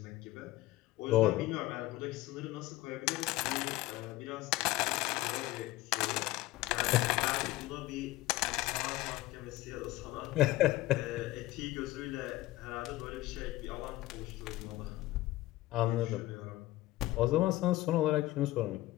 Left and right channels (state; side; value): quieter; right; 17.1 dB